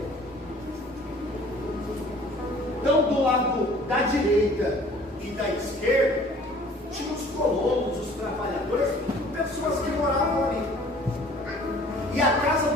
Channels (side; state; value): both; normal; correlation 0.51